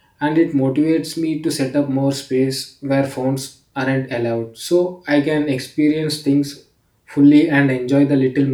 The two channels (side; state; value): both; identical; correlation 1.00